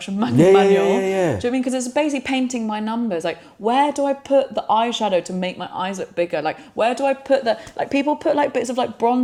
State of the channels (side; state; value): both; identical; correlation 1.00